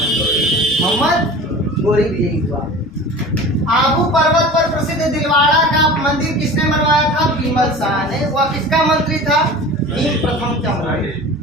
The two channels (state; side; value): normal; both; correlation 0.37